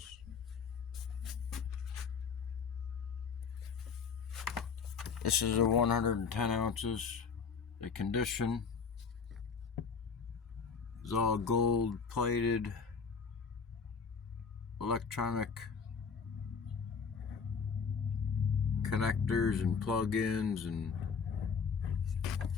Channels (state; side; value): quieter; right; 5.7 dB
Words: This is the 110 ounces. The condition is all gold plated electronic connectors and plug-ins,